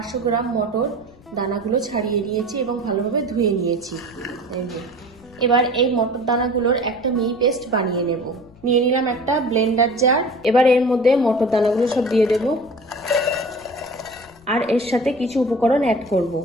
গ্রাম মটর, দানাগুলো ছাড়িয়ে নিয়েছি এবং ভালোভাবে ধুয়ে নিয়েছি। এবার এই মটর দানাগুলোর একটা মিহি পেস্ট বানিয়ে নেব। নিয়ে নিলাম একটা ব্লেন্ডার জার। এবার এর মধ্যে মটর দানাগুলো সব দিয়ে দেব, আর এর সাথে কিছু উপকরণ অ্যাড করব।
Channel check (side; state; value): left; noise; rumble, 26 dB below the sound